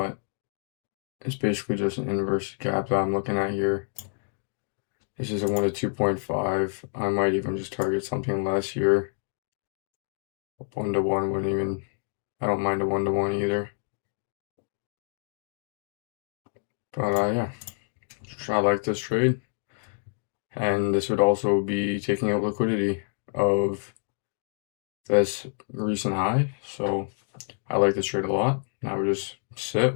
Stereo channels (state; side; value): silent; right; digital silence